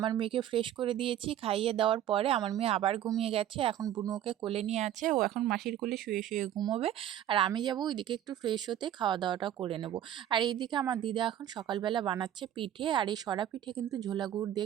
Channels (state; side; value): quieter; left; 11.3 dB